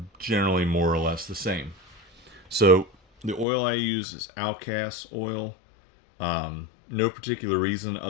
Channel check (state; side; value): drops out; right; at 3.5 s